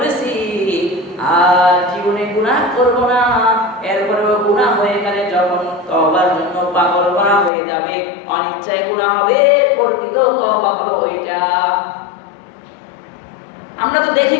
আর জীবনে গুনাহ করব না। এরপরেও গুনাহ হয়ে গেলে যখন তওবার জন্য পাগল করা হয়ে যাবে, অনিচ্ছায় গুনাহ হবে, প্রকৃত তওবা হলো ওইটা। দেখি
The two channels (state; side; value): drops out; right; at 7.5 s